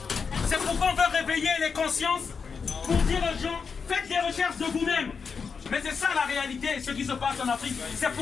C'est pourquoi on veut réveiller les consciences pour dire aux gens, faites des recherches de vous-même. Mais c'est ça la réalité, ce qui se passe en Afrique. C'est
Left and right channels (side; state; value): right; quieter; 5.6 dB